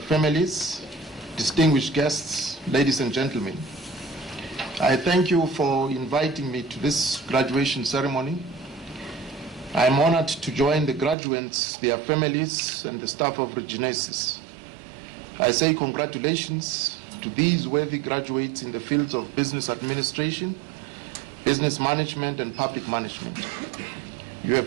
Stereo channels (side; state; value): left; drops out; at 11.2 s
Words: distinguished guests, ladies and gentlemen. I thank you for inviting me to this graduation ceremony. I am honored to join the graduates, their families, and the staff of Regenesys. I say congratulations to these worthy graduates in the fields of business administration, business management, and public management. You